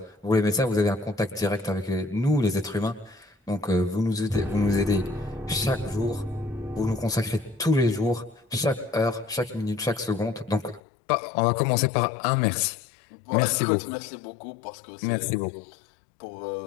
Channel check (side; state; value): right; drops out; at 10.8 s